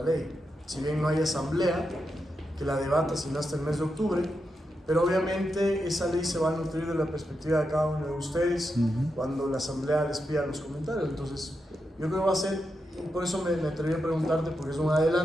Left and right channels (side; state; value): both; normal; correlation 0.86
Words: ley. Si bien no hay asamblea que la debata sino hasta el mes de octubre, pero obviamente esa ley se va a nutrir de la perspectiva de cada uno de ustedes cuando la asamblea les pida los comentarios. Entonces yo creo que va a ser, y por eso me atreví a preguntarte porque es un